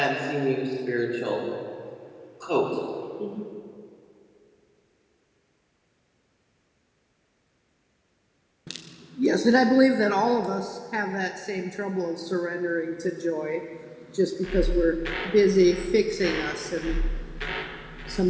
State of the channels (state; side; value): identical; both; correlation 1.00